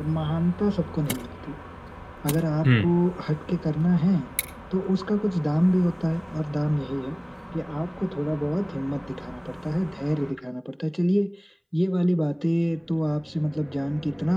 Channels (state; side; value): identical; both; correlation 1.00